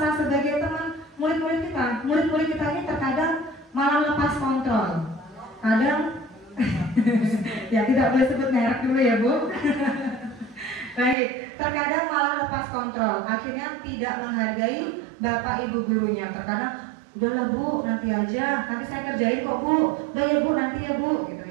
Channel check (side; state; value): left; drops out; at 11.2 s